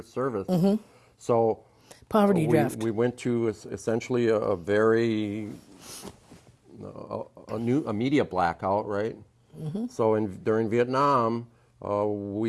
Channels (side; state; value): both; identical; correlation 1.00